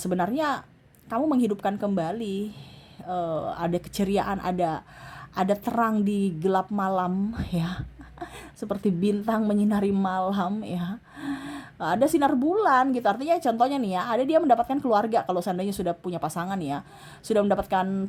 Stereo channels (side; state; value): both; identical; correlation 1.00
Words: kamu menghidupkan kembali, ada keceriaan, ada terang di gelap malam ya. Seperti bintang menyinari malam ya. Ada sinar bulan gitu, artinya contohnya nih ya, ada dia mendapatkan keluarga kalau seandainya sudah punya pasangan ya, sudah mendapatkan